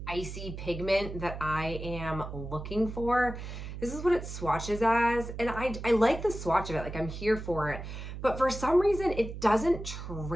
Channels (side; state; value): right; noise; hum, 9 dB below the sound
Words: icy pigment that I am looking for. This is what it swatches as, and I like the swatch of it. I'm here for it, but for some reason it doesn't